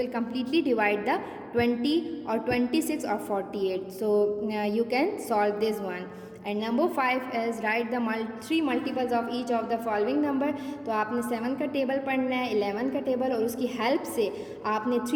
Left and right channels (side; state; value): both; identical; correlation 1.00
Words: completely divide the 20 or 26 or 48. So you can solve this one. And number 5 is right the 3 multiples of each of the following number. तो आपने 7 का table पढ़ना है, 11 का table, और उसकी help से आपने